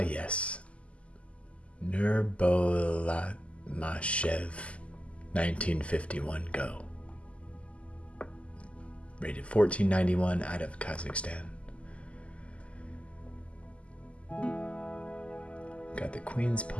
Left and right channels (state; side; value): late; right; 0.060 ms